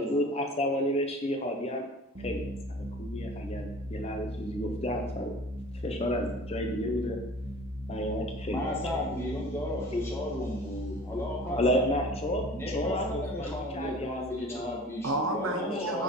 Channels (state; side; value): normal; both; correlation 0.43